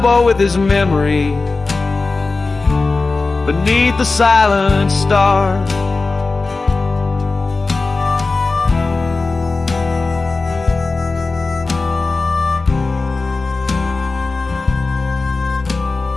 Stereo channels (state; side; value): quieter; right; 3.8 dB